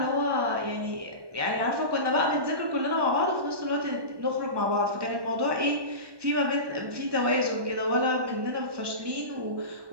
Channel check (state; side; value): late; left; 1.2 ms